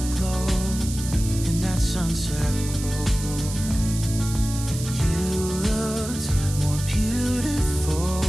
glow, in that sunset glow. You looked more beautiful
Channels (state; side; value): noise; right; hiss, 10 dB below the sound